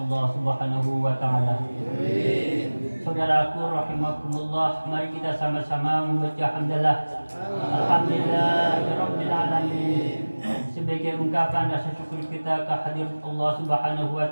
Subhanahu wa taala. Saudaraku rahimakumullah, mari kita sama-sama membaca hamdalah. Alhamdulillahirabbil alamin. Sebagai ungkapan rasa syukur kita kehadirat Allah Subhanahu wa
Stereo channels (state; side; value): inverted; both; correlation -1.00